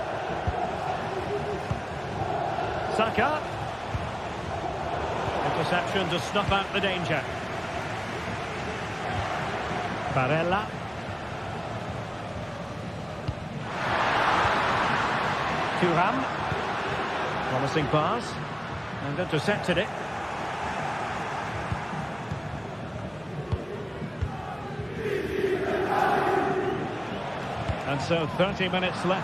Saka. Interception to snuff out the danger. Barella. Thuram. Promising pass. And intercepted it. And so 30 minutes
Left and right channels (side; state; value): right; noise; hum, 27 dB below the sound